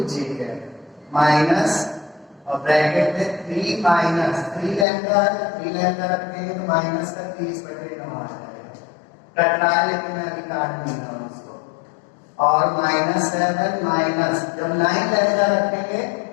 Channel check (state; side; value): drops out; right; at 4.9 s